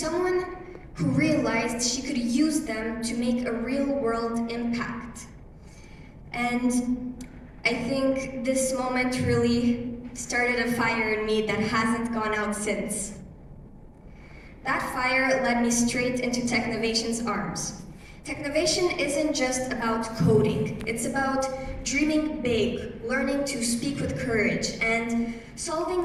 who realized she could use them to make a real-world impact. And I think this moment really started a fire in me that hasn't gone out since. That fire led me straight into Technovation's arms. Technovation isn't just about coding, it's about dreaming big, learning to speak with courage, and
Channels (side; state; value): both; identical; correlation 1.00